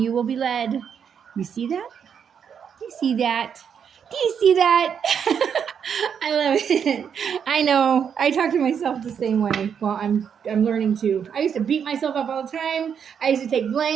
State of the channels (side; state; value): left; quieter; 7.5 dB